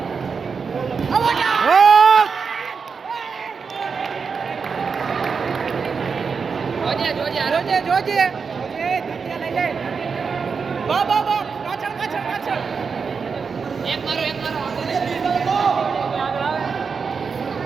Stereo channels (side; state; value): left; quieter; 5.5 dB